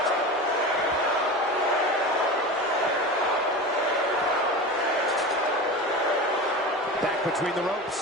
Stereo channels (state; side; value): normal; both; correlation 0.29